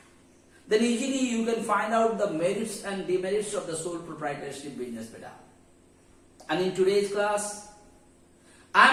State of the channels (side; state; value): both; identical; correlation 1.00